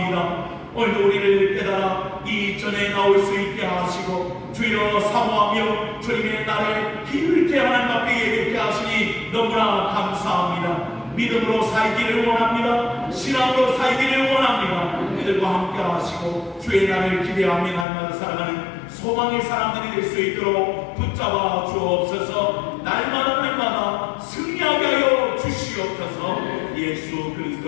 오늘도 우리를 깨달아 이 전에 나올 수 있게 하시고 주여 사모하며 주님의 날에 힘있게 하나님 앞에 예배케 하시니 너무나 감사합니다. 믿음으로 살기를 원합니다. 신앙으로 살기를 원합니다. 이들과 함께 하시고 주의 날을 기대하며 날마다 살아가는 소망의 사람들이 될 수 있도록 붙잡아 주옵소서. 날마다 승리하게 하여 주시옵소서. 예수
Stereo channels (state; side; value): drops out; right; at 17.9 s